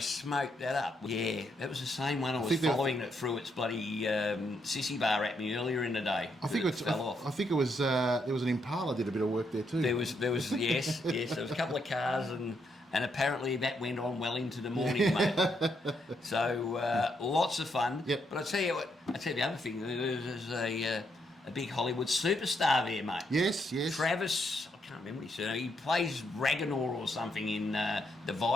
that up. Yeah, that was the same one I was following that threw its bloody sissy bar at me earlier in the day. I think it fell off. I think it was there was an Impala did a bit of work there too. There was yes. There was a couple of cars and apparently that went on well into the morning, mate. So lots of fun. Yep. But I tell you the other thing. There's a big Hollywood superstar there, mate. Yes. Travis. I can't remember his surname. He plays Ragnar or something in the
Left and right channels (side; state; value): both; normal; correlation 0.77